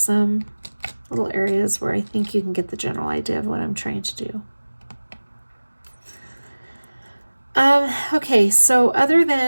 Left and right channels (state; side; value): inverted; both; correlation -1.00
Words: little areas where I think you can get the general idea of what I'm trying to do. Okay, so other